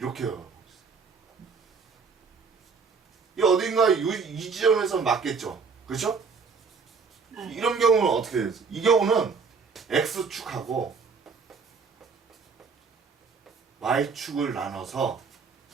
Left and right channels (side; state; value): left; quieter; 5.1 dB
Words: 가고 있어. 이 어딘가 이 지점에서 맞겠죠, 그렇죠? 네. 이런 경우는 어떻게 되죠? 이 경우는 X축하고 Y축을 나눠서